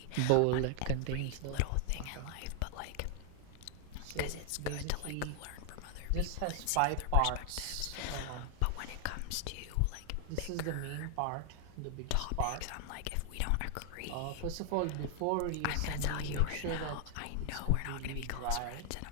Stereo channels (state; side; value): different; both; correlation 0.00